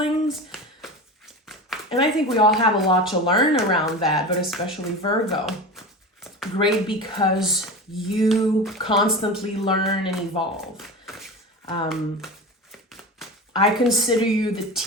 And I think we all have a lot to learn around that, but especially Virgo. Great, because you constantly learn and evolve. I consider you the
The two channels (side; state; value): both; normal; correlation 0.28